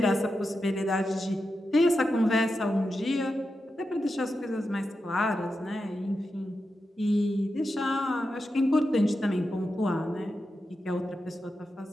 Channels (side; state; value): both; normal; correlation 0.89